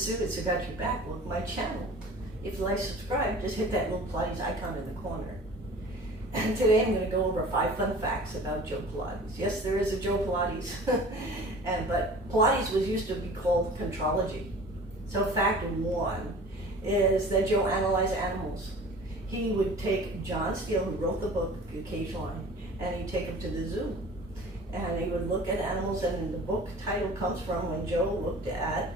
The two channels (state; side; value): normal; both; correlation 0.43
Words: Sue. It's Got Your Back. Welcome to my channel. If you like to subscribe, just hit that little Pilates icon in the corner. And today I'm going to go over 5 fun facts about Joe Pilates. Yes, there is a Joe Pilates, but Pilates was used to be called contrology. So fact 1 is that Joe analyzed animals. He would take John Steele, who wrote the book, The Cage Lion, and he'd take him to the zoo. And he would look at animals, and the book title comes from when Joe looked at